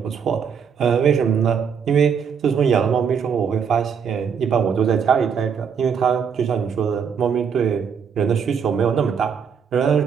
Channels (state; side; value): quieter; left; 6.9 dB